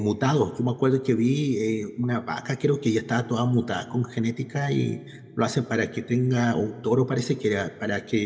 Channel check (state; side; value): identical; both; correlation 1.00